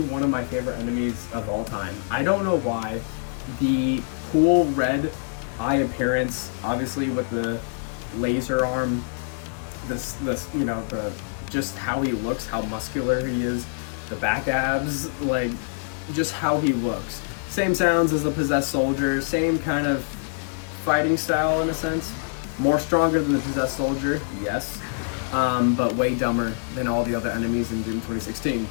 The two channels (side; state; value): right; silent; digital silence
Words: one of my favorite enemies of all time. I don't know why. The cool red eye appearance, obviously with the laser arm, this you know, the just how he looks, how muscular he is, the back abs, like just how he looks. Same sounds as the Possessed Soldier, same kind of fighting style in a sense. More stronger than the Possessed Soldier, yes, but way dumber than all the other enemies in Doom 2016.